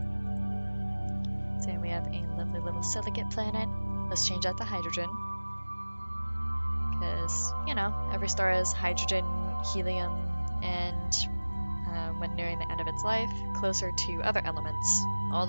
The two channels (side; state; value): both; inverted; correlation -1.00